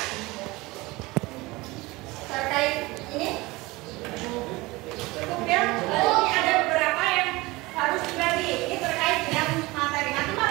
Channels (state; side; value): quieter; left; 21.9 dB